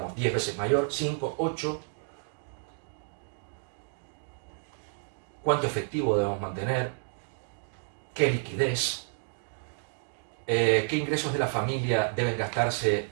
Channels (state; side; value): silent; left; 58 dB below the other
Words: 10 veces mayor, 5, 8. ¿Cuánto efectivo debemos mantener? ¿Qué liquidez? ¿Qué ingresos de la familia deben gastarse